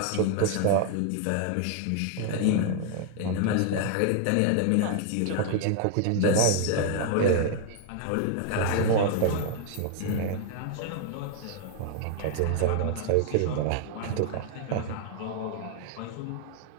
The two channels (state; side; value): different; both; correlation 0.00